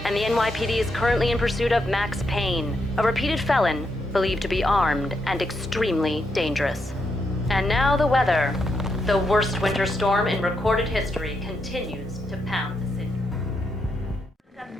and the NYPD is currently in pursuit of Max Payne, a repeated felon believed to be armed and extremely dangerous. And now the weather. The worst winter storm in recorded history continues to pound the city.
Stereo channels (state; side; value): normal; both; correlation 0.81